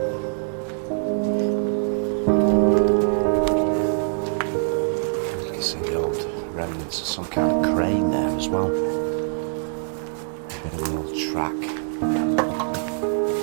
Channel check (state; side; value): silent; left; digital silence